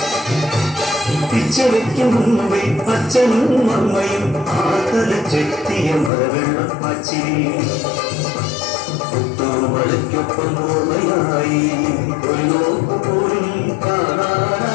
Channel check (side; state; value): right; drops out; at 6.1 s